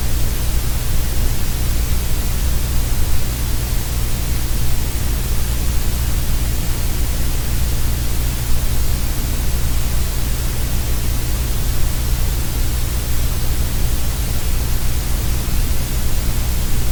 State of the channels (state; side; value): identical; both; correlation 1.00